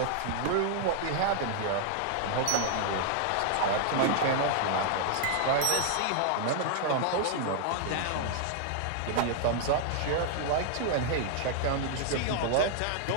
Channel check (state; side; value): different; both; correlation -0.01